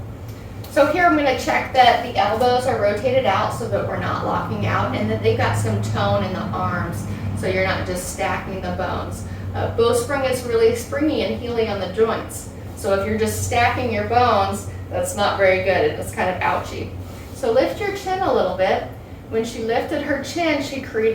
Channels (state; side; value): identical; both; correlation 1.00